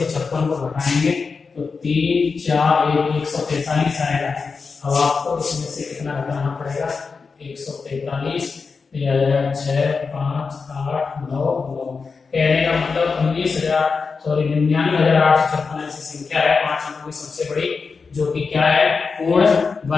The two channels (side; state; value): right; quieter; 4.9 dB